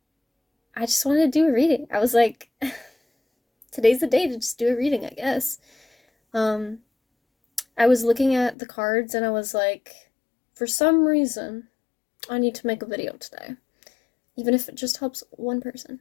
I just wanted to do a reading. I was like, today's the day to just do a reading, I guess. I was looking at the cards and I was like, for some reason, I need to make a video today. Even if it just helps one person.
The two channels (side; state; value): right; drops out; at 8.6 s